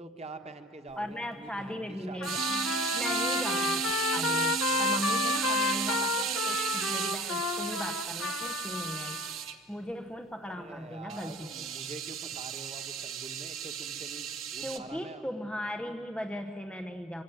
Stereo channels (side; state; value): both; normal; correlation 0.44